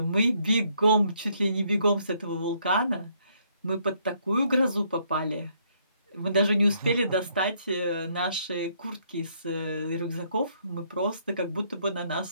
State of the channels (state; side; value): inverted; both; correlation -0.69